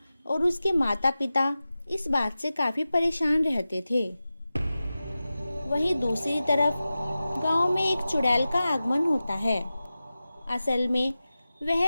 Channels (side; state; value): both; inverted; correlation -0.95